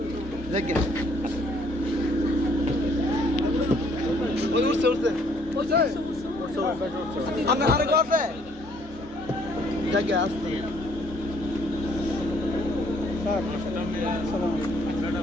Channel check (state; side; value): normal; both; correlation 0.64